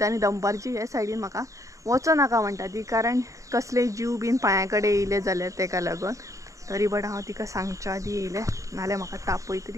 आनी दनपारची हे सायडीन म्हाका वचो नाका म्हणटा ती कारण कसले जीव बीन पांया कडेन येयले जाल्यार तेका लागून तरी बट हांव तिका सांगच्या आदी येयलें नाल्यार म्हाका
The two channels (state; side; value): late; left; 0.16 ms